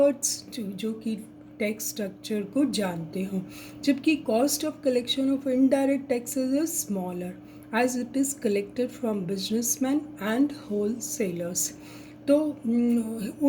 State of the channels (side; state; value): both; identical; correlation 1.00